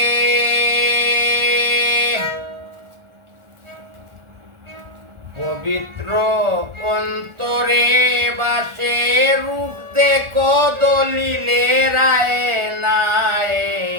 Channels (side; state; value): left; late; 1.4 ms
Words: পবিত্র অন্তরে বাসে, রূপ দেখো দলিলে রায় নাই,